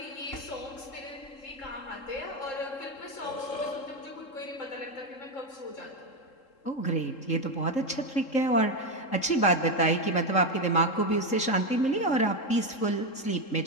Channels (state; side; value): late; right; 3.7 ms